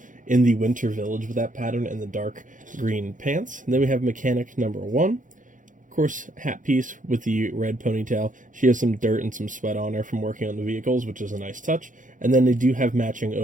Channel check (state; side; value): late; left; 0.38 ms